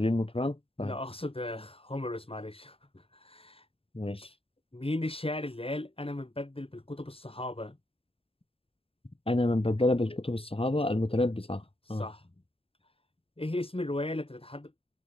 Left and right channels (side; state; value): right; late; 0.27 ms